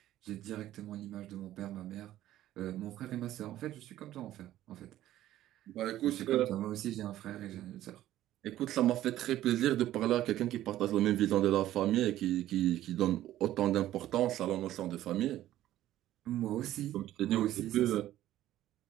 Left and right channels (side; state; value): left; quieter; 13.6 dB